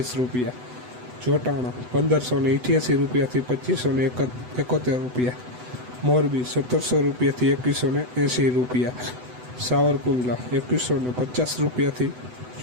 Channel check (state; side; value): late; left; 8.0 ms